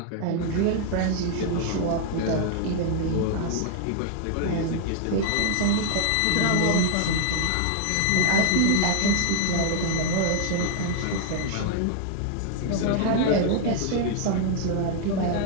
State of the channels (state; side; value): different; both; correlation 0.00